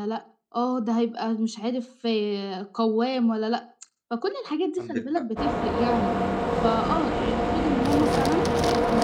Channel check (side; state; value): both; identical; correlation 1.00